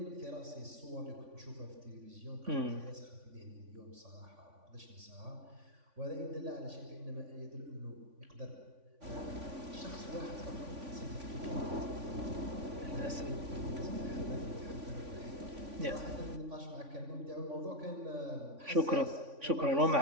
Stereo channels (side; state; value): left; late; 3.5 ms